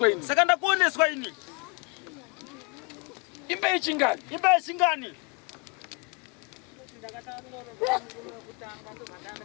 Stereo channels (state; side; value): quieter; right; 33.0 dB